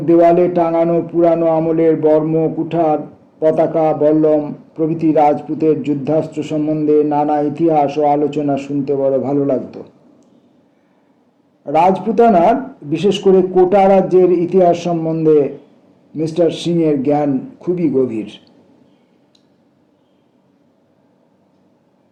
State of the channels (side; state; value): both; identical; correlation 1.00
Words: দেওয়ালে টাঙানো পুরানো আমলের বর্ম, কুঠার, পতাকা, বল্লম প্রভৃতি রাজপুতের যুদ্ধাস্ত্র সম্বন্ধে নানা ইতিহাস ও আলোচনা শুনতে বড় ভালো লাগতো। রাজপুতানার, বিশেষ করে কোটা রাজ্যের ইতিহাস সম্বন্ধে মিস্টার সিংয়ের জ্ঞান খুবই গভীর।